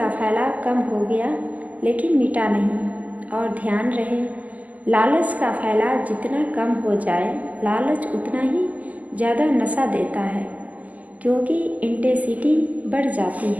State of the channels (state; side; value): late; left; 0.073 ms